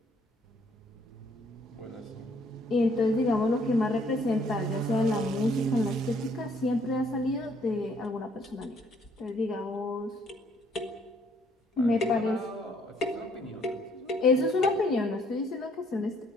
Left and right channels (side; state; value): both; normal; correlation 0.65